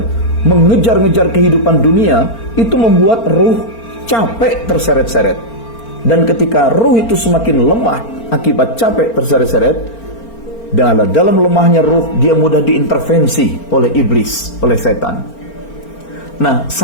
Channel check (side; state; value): right; late; 4.4 ms